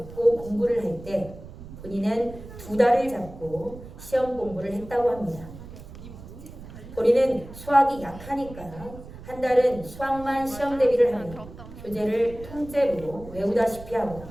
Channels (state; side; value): noise; right; rumble, 15 dB below the sound